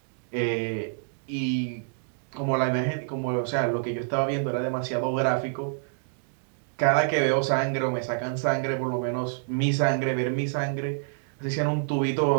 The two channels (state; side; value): silent; left; digital silence